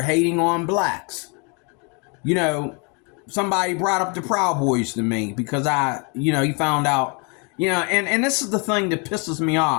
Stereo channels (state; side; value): quieter; right; 33.8 dB